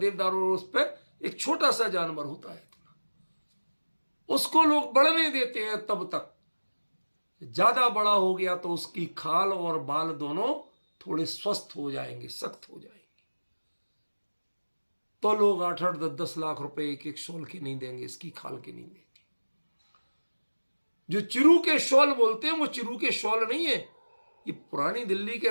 उस पर एक छोटा सा जानवर होता है, उसको लोग बढ़ने देते हैं तब तक। ज्यादा बड़ा हो गया तो उसकी खाल और बाल दोनों थोड़े स्वस्थ हो जाएंगे, सख्त हो जाएंगे। तो लोग 8-8, 10-10 लाख रुपए एक शॉल के नहीं देंगे, इसकी खाल के नहीं देंगे। जो चिरू के शॉल बोलते हैं वो चिरू के शॉल नहीं है, ये पुरानी दिल्ली के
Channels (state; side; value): inverted; both; correlation -1.00